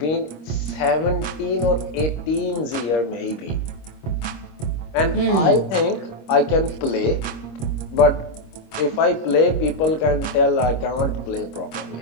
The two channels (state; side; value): late; right; 26 ms